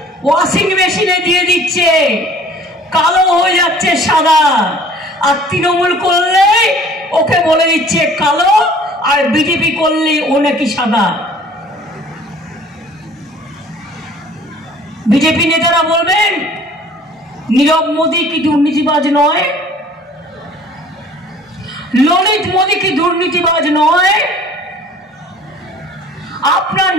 ওয়াশিং মেশিনে দিয়ে দিচ্ছে, কালো হয়ে যাচ্ছে সাদা। আর তৃণমূল করলে ওকে বলে দিচ্ছে কালো, আর বিজেপি করলে ও নাকি সাদা। বিজেপি নেতারা বলবেন নীরব মোদী কি দুর্নীতিবাজ নয়? ললিত মোদী কি দুর্নীতিবাজ নয়? আপনার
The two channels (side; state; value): both; normal; correlation 0.51